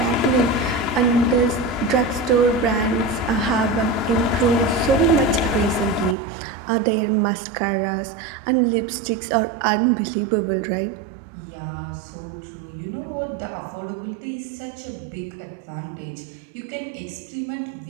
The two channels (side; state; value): left; drops out; at 6.2 s